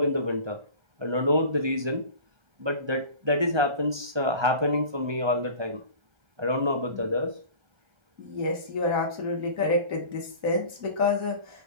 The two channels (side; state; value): left; late; 1.2 ms